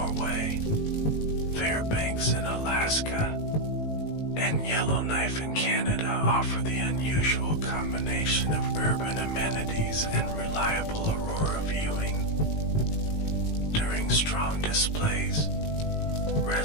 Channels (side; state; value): right; late; 18 ms